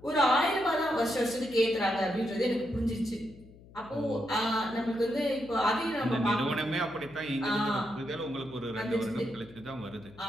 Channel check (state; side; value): noise; left; hum, 22 dB below the sound